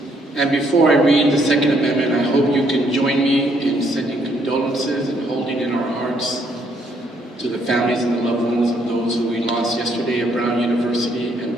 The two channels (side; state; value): both; normal; correlation 0.70